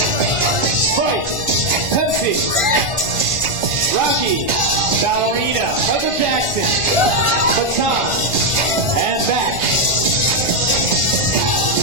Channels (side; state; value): left; late; 1.4 ms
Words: Pepsi. Rocky. Ballerina. Michael Jackson. Baton. And back.